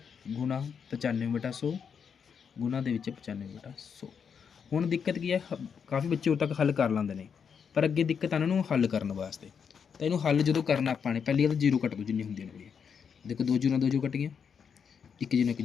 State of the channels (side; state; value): right; quieter; 6.8 dB